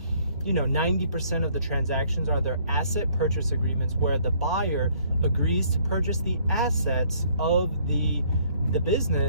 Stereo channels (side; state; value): both; inverted; correlation -0.62